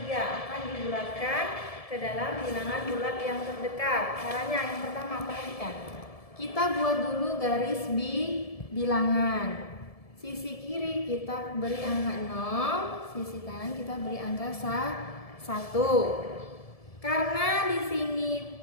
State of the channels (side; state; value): right; late; 1.7 ms